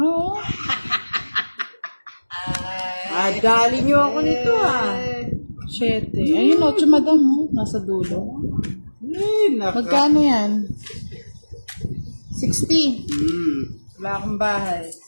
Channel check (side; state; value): both; inverted; correlation -1.00